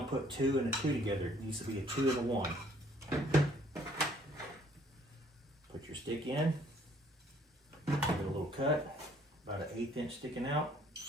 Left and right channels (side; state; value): both; normal; correlation 0.61